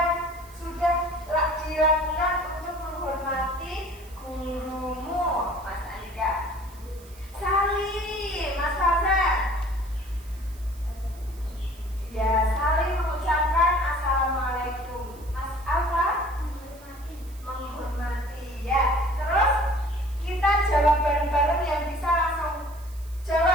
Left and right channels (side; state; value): right; noise; hiss, 23 dB below the sound